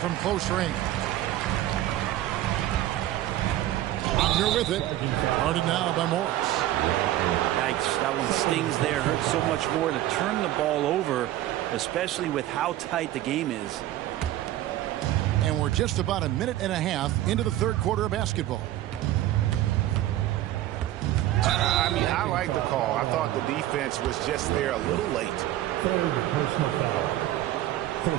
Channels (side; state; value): left; quieter; 14.2 dB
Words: close range. Wagner with it. Guarded now by Morris. Yikes, that one stings there. Hurts so much more to turn the ball over, especially with how tight the game is. And we're just about a minute and a half into the third quarter of basketball. I mean, I like the call. I thought the defense was just there a little late. Third personal foul.